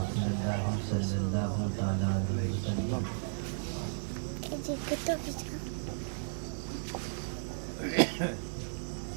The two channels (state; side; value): silent; left; digital silence